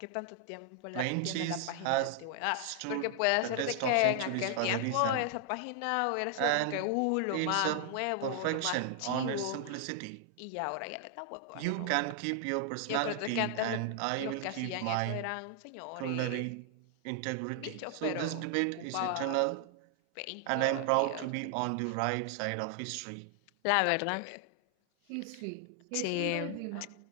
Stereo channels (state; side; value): different; both; correlation 0.00